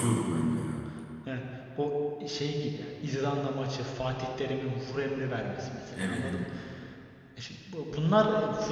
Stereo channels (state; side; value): identical; both; correlation 1.00